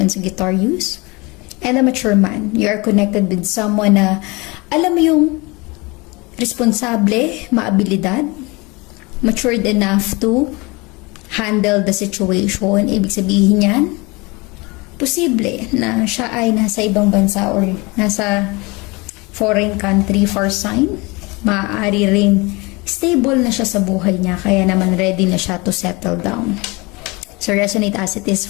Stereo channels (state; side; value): quieter; right; 25.7 dB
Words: Sagittarius. And a mature man, you are connected with someone na alam mo yung responsable, maabilidad, matured enough to handle the situation. Ibig sabihin yan, posible na siya ay nasa ibang bansa or nasa foreign country for sign. Maaari ring stable na siya sa buhay niya, kaya naman ready na siya to settle down. So resonate as it is